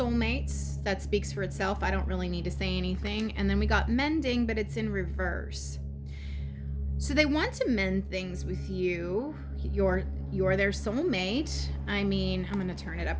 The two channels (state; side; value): identical; both; correlation 1.00